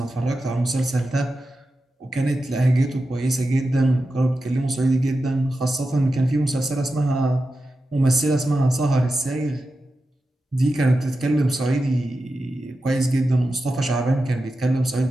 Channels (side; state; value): both; normal; correlation 0.91